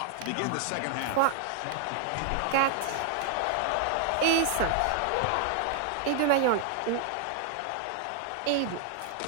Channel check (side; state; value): both; different; correlation 0.00